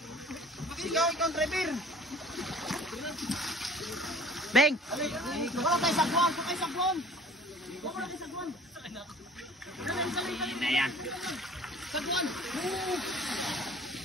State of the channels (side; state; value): both; normal; correlation 0.48